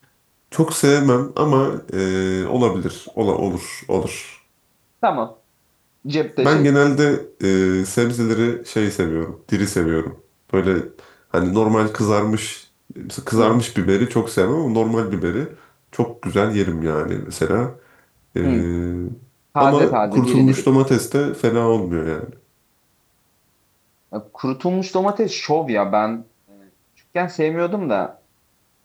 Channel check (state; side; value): identical; both; correlation 1.00